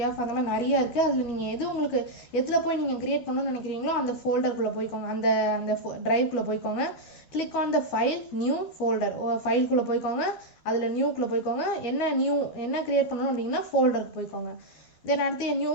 F அந்த மாதிரி நிறைய இருக்குது. அதில் நீங்கள் உங்களுக்கு எதில் போய் நீங்கள் க்ரியேட் பண்ணணும்னு நினைக்கிறீங்களோ அந்த ஃபோல்டருக்குள்ளே போய்க்கோங்க, அந்த ட்ரைவ்குள்ளே போய்க்கோங்க. Click on the file new folder. ஃபைல்குள்ளே போய்க்கோங்க, அதில் நியூக்குள்ளே போய்க்கோங்க. என்ன க்ரியேட் பண்ணணும் அப்படின்னா ஃபோல்டருக்கு போய்க்கோங்க. தென் அடுத்து new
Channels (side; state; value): right; late; 12 ms